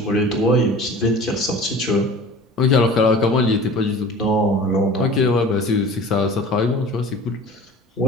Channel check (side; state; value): both; normal; correlation 0.41